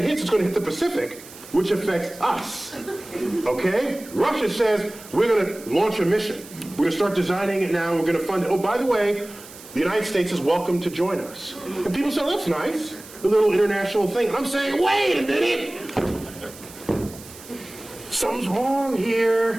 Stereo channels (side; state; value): right; noise; hiss, 18 dB below the sound